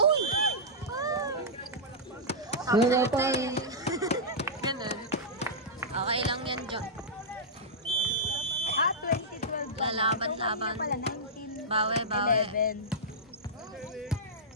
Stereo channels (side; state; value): both; normal; correlation -0.11